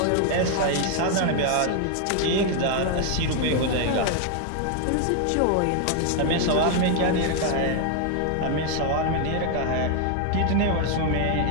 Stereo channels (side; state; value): both; different; correlation 0.01